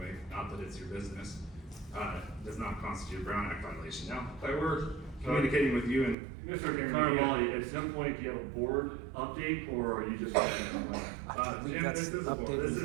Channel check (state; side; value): drops out; left; at 6.2 s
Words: not that it's your business, does not constitute a Brown Act violation. Now, if I were communicating with you and Mr. Carnevale, at some point, do you have a board update, or are you just? Jim, this